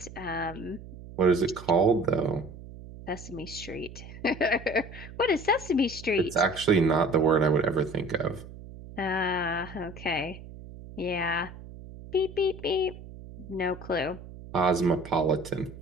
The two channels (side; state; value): right; noise; hum, 15 dB below the sound